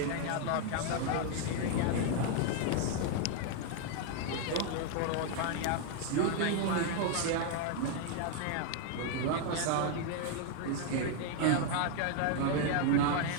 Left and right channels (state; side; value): different; both; correlation 0.00